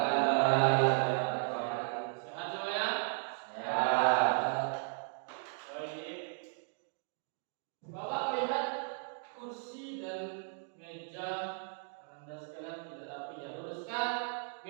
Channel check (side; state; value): left; silent; 54 dB below the other